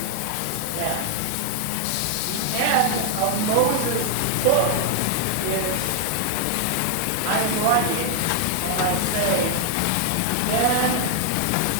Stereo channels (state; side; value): different; both; correlation 0.00